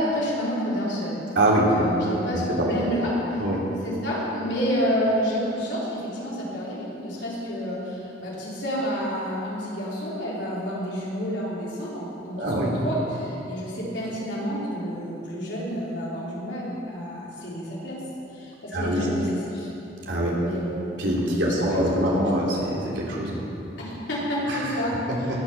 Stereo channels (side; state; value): both; normal; correlation 0.39